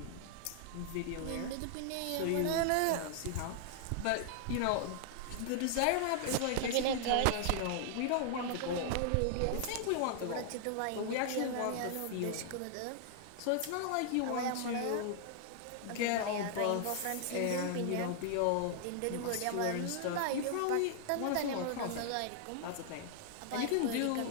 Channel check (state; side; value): different; both; correlation 0.00